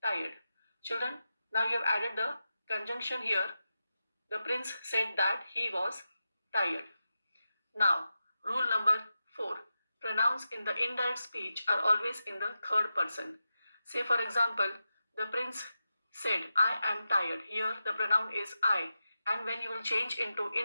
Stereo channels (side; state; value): both; inverted; correlation -0.91